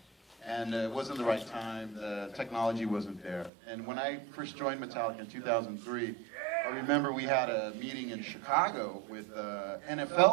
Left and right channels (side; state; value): left; drops out; at 3.5 s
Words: And it wasn't the right time, the technology wasn't there. And when I first joined Metallica in 2003, I remember we had a meeting in Chicago with